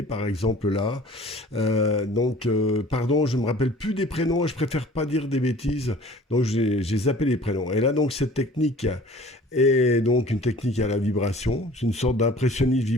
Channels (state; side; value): normal; both; correlation 0.48